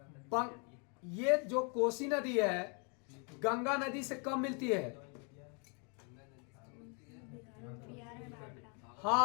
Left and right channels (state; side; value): quieter; right; 37.2 dB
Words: ये जो कोसी नदी है गंगा नदी से कब मिलती है?